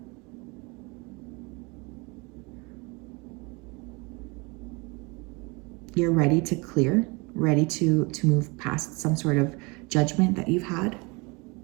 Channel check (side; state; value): left; quieter; 28.0 dB